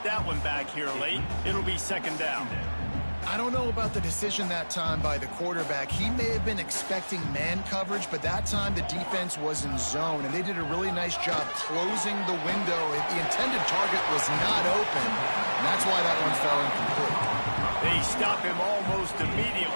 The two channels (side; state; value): both; inverted; correlation -1.00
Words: that one back here late. It'll be second down. I don't know about the decision that time by the quarterback. He may have been expecting man coverage, but that time the defense was in zone, and they did a really nice job closing the window. The intended target was not open, and that's why that one fell incomplete. They stop him almost